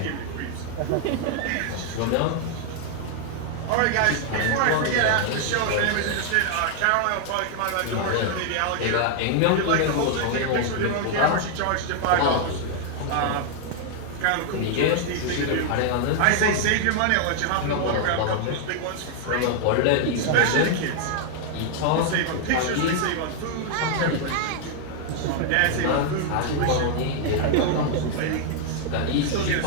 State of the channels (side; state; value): both; different; correlation 0.00